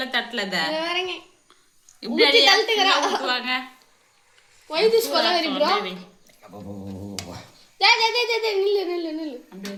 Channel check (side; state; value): both; identical; correlation 1.00